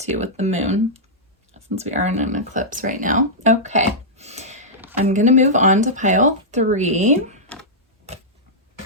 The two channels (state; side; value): normal; both; correlation -0.11